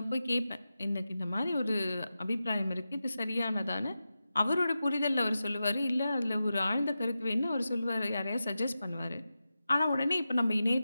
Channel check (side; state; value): both; inverted; correlation -0.92